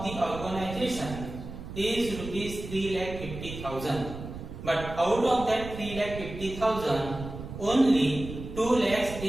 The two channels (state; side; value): noise; right; rumble, 10 dB below the sound